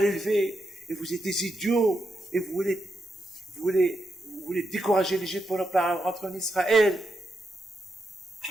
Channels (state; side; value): normal; both; correlation 0.84